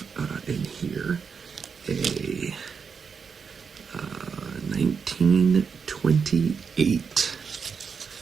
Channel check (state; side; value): quieter; left; 6.0 dB